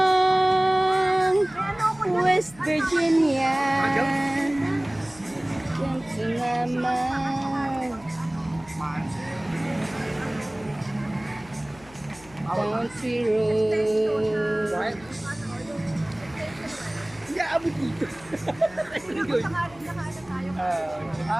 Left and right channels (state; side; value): noise; left; hum, 23 dB below the sound